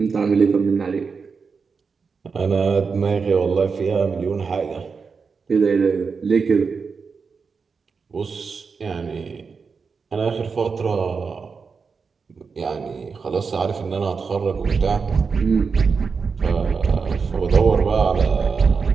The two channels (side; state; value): left; quieter; 5.2 dB